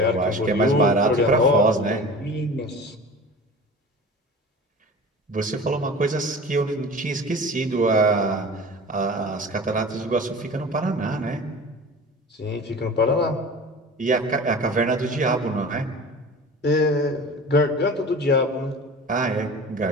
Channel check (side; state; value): both; normal; correlation 0.37